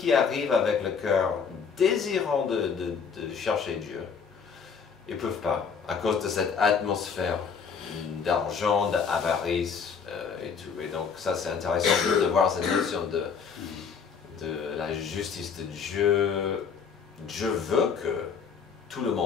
arrivent avec le cœur désirant de chercher Dieu, ils ne peuvent pas, à cause de cette atmosphère d'argent, d'avarice et tout. Et donc ça, c'est intéressant de voir cette notion de la justice de Dieu. Dieu veut que tout le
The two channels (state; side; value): quieter; right; 6.2 dB